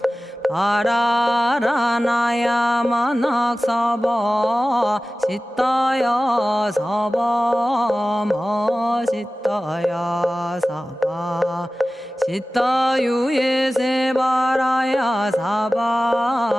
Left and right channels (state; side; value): normal; both; correlation 0.96